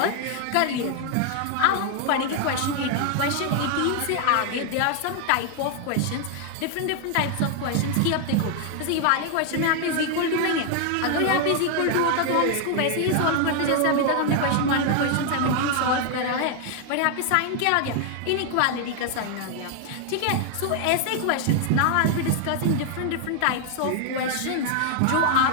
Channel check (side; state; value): both; different; correlation 0.00